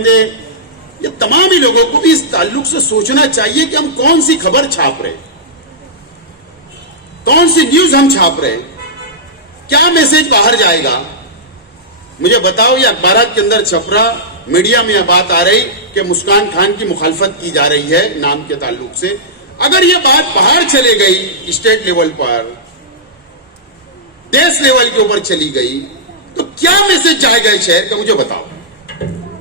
ये तमाम ही लोगों को भी इस ताल्लुक से सोचना चाहिए कि हम कौन सी खबर छाप रहे, कौन सी न्यूज हम छाप रहे, क्या मैसेज बाहर जाएगा। मुझे बताओ, ये अखबारात के अंदर छप रहा, मीडिया में यह बात आ रही कि मुस्कान खान की मुखालफत की जा रही है नाम के ताल्लुक से। अगर ये बात बाहर चले गई, स्टेट लेवल पर, देश लेवल के ऊपर चली गई, तो क्या मैसेज जाएगा इस शहर का, मुझे बताओ,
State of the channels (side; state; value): both; normal; correlation -0.13